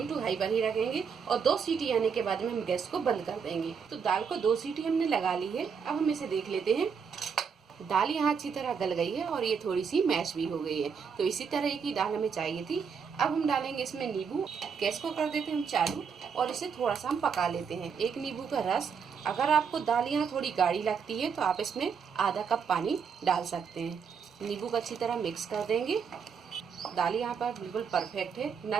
टू हाई पर ही रखेंगे और 2 सीटी आने के बाद में हम गैस को बंद कर देंगे। तो दाल को 2 सीटी हमने लगा ली है। अब हम इसे देख लेते हैं। दाल यहाँ अच्छी तरह गल गई है और ये थोड़ी सी मैश भी हो गई है। तो इसी तरह की दाल हमें चाहिए थी। अब हम डालेंगे इसमें नींबू। गैस को कर देते हैं हम चालू और इसे थोड़ा सा हम पका लेते हैं। 1 नींबू का रस। अगर आपको दाल यहाँ थोड़ी गाढ़ी लगती है तो आप इसमें आधा कप पानी डाल सकते हैं। नींबू को अच्छी तरह मिक्स कर देंगे। दाल यहाँ पर बिल्कुल परफेक्ट है, ना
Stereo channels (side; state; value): left; quieter; 6.4 dB